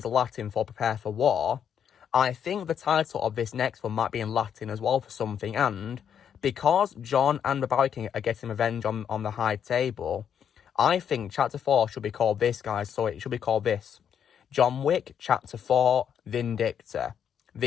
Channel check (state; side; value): quieter; right; 8.4 dB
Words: Latin for prepare for war, I think the title of this next one might be in Latin as well for something. And because John and the Bowery King are getting revenge on the High Table, I think Chapter 4 should be called this, guys. So it should be called this: John Wick Chapter 4 Vindicta.